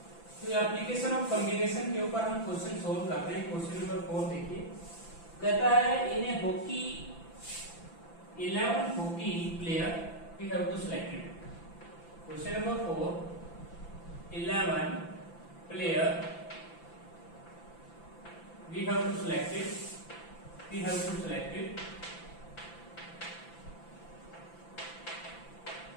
तो एप्लीकेशन ऑफ कॉम्बिनेशन के ऊपर हम क्वेश्चन सोल्व करते हैं। क्वेश्चन नंबर 4 देखिए कहता है in a hockey 11 hockey player we have to selected. Question number 4 11 player we have to selected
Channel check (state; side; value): late; right; 5.9 ms